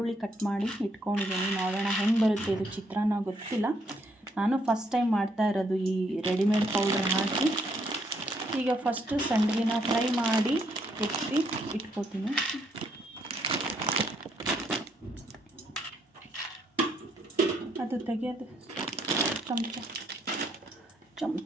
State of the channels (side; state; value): both; normal; correlation 0.72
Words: ಕಟ್ ಮಾಡಿ ಇಟ್ಕೊಂಡಿದ್ದೀನಿ. ನೋಡೋಣ ಹೆಂಗೆ ಬರುತ್ತೆ ಇದು ಚಿತ್ರಾನ್ನ, ಗೊತ್ತಿಲ್ಲ. ನಾನು ಫಸ್ಟ್ ಟೈಮ್ ಮಾಡ್ತಾ ಇರೋದು ಈ ರೆಡಿಮೇಡ್ ಪೌಡ್ರ್ ಹಾಕಿ. ಈಗ ಫಸ್ಟು ಸಂಡಿಗೆನ ಫ್ರೈ ಮಾಡಿ ಎತ್ತಿ ಇಟ್ಕೋತೀನಿ. ಅದು ತೆಗೆಯೋದು